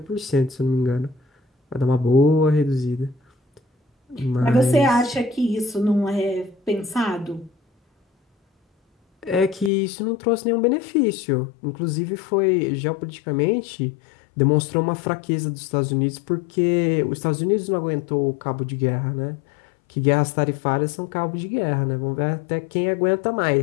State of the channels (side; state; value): right; drops out; at 9.7 s